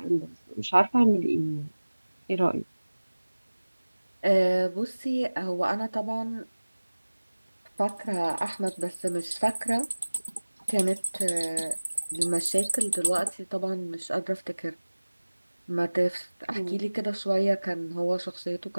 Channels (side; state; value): both; inverted; correlation -1.00